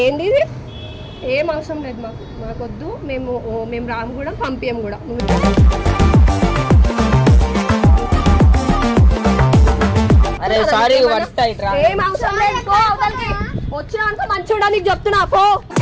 ఇది? ఏం అవసరం లేదు మాకు, మాకొద్దు. మేము రాము కూడా, పంపియం కూడా. ఏం అవసరం లేదు, వచ్చినాక మంచి ఉండడానికి చెప్తున్నా పో.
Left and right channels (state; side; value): identical; both; correlation 1.00